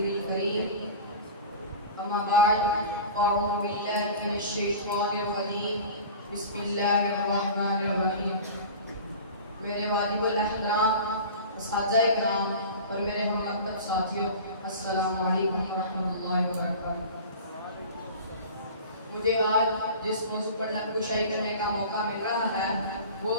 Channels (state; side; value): inverted; both; correlation -0.36